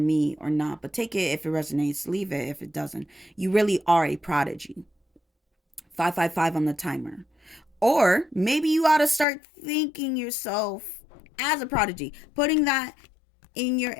or not, but take it if it resonates, leave it if it doesn't. You really are a prodigy. 555 on the timer. Or maybe you ought to start thinking yourself as a prodigy, putting that in your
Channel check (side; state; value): right; drops out; at 9.2 s